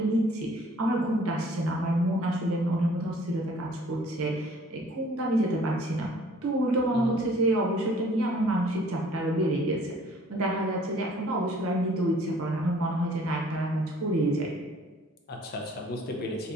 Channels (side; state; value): both; normal; correlation 0.56